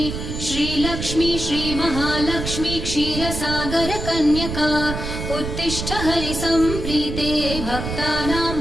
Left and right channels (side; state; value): right; noise; rumble, 5 dB below the sound